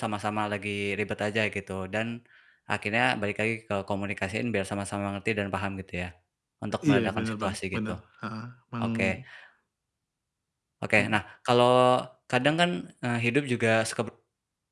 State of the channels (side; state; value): both; identical; correlation 1.00